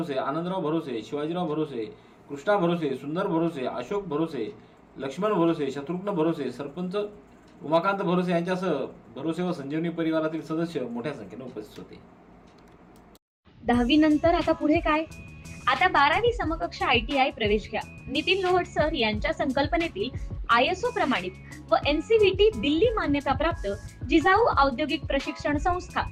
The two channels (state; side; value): identical; both; correlation 1.00